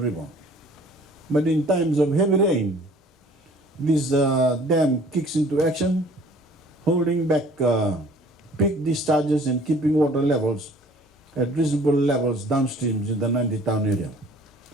But in times of heavy rain, this dam kicks into action, holding back peak discharges and keeping water levels at reasonable levels downstream in the Nandi town area.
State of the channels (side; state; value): both; normal; correlation 0.53